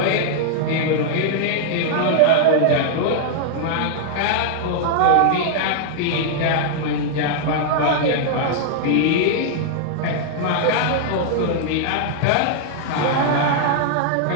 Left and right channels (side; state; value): both; different; correlation -0.01